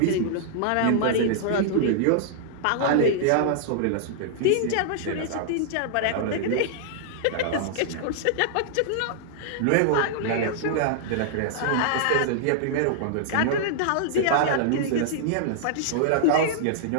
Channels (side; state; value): both; different; correlation -0.01